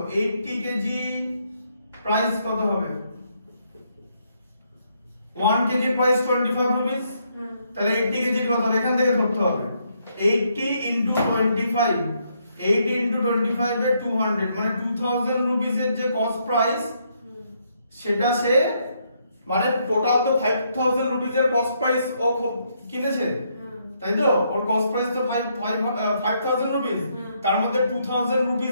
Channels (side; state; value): both; inverted; correlation -0.74